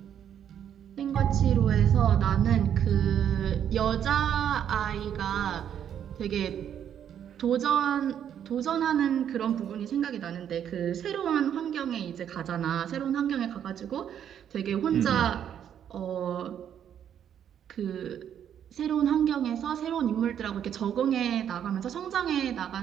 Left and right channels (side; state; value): left; quieter; 9.3 dB